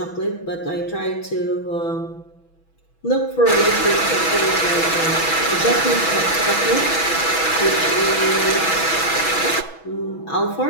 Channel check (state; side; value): late; right; 6.1 ms